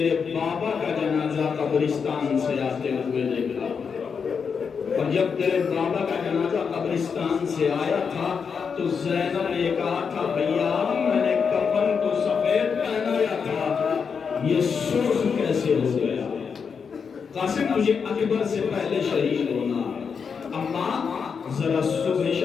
بابا کا جنازہ قبرستان سے آتے ہوئے دیکھا، اور جب تیرے بابا کا جنازہ قبرستان سے آیا تھا تو زینب نے کہا تھا بھیا میں نے کفن تو سفید پہنایا تھا، یہ سرخ کیسے ہو گیا؟ قاسم تجھے اکبر سے پہلے شہید ہونا، اما ذرا صبح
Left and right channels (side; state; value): right; quieter; 6.1 dB